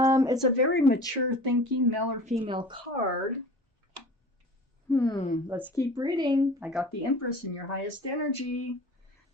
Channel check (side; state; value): both; normal; correlation 0.41